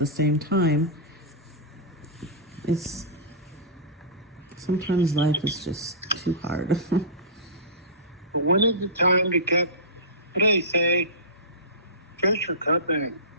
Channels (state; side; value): normal; both; correlation -0.20